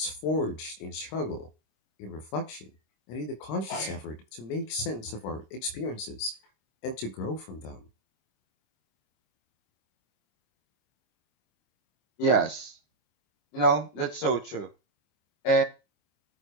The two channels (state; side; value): late; right; 26 ms